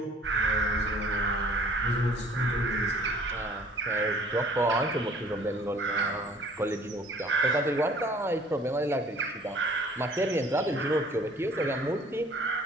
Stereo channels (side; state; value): both; normal; correlation 0.54